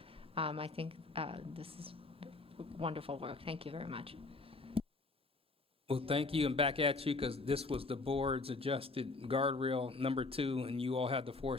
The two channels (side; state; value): right; quieter; 3.5 dB